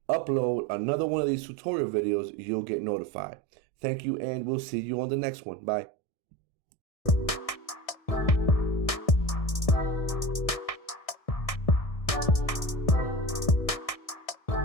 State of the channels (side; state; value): right; late; 1.6 ms